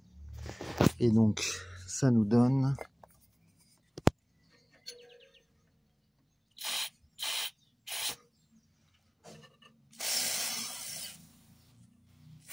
Et donc ça nous donne...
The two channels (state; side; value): identical; both; correlation 1.00